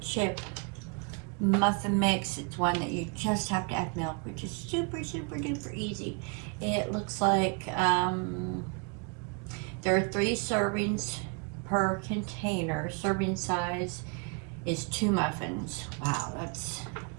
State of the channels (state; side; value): quieter; left; 35.5 dB